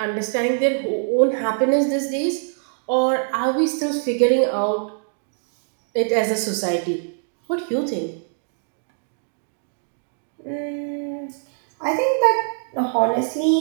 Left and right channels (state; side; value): silent; left; digital silence